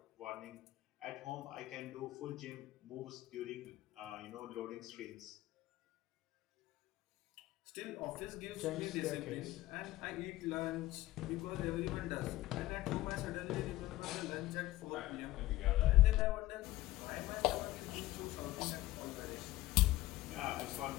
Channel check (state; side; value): quieter; right; 16.9 dB